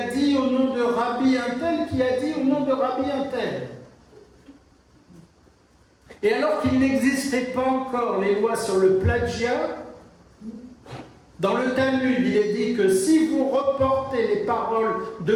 dit au nom de Rabbi un tel qui a dit au nom de Rabbi un tel ». Et alors qu'il n'existait pas encore les lois sur le plagiat, dans le Talmud, il est dit que si vous reportez les paroles de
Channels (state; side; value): identical; both; correlation 1.00